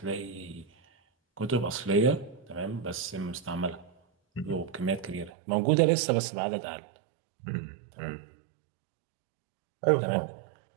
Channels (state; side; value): drops out; left; at 5.3 s